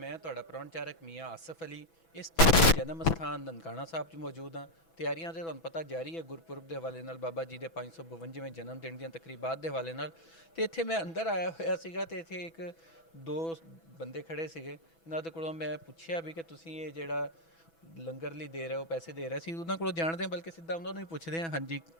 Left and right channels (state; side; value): late; right; 6.1 ms